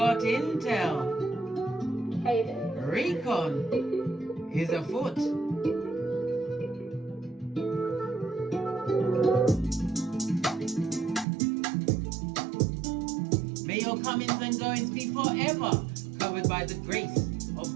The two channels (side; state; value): left; drops out; at 11.2 s